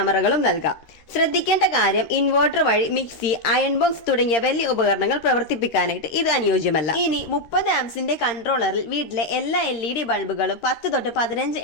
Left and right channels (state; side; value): late; right; 13 ms